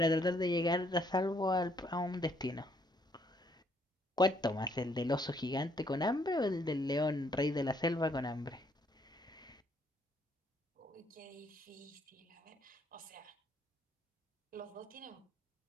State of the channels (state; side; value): normal; both; correlation 0.68